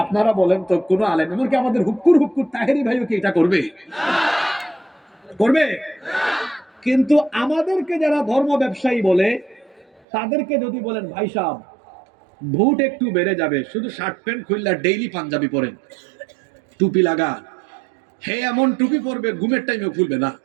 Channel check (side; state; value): left; drops out; at 10.0 s